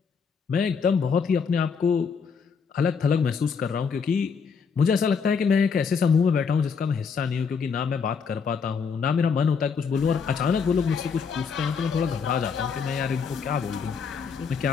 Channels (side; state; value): right; quieter; 5.9 dB